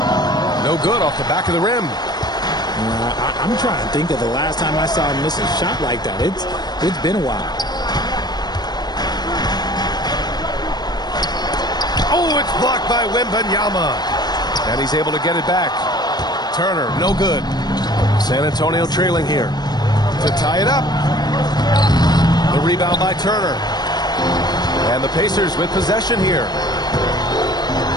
No good off the back of the rim. I'm trying to think of the last time I saw him miss a shot like that. It's been a while. Oh, it's blocked by Wembanyama. And he's able to get it back. Turner, no good. San Antonio trailing here. To tie it up. The rebound by Turner. And the Pacers with possession here.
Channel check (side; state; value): right; late; 0.20 ms